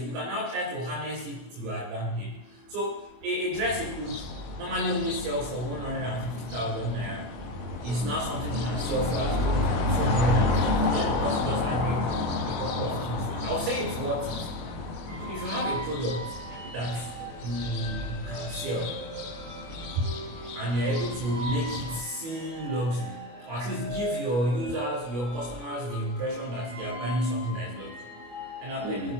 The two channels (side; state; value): left; late; 25 ms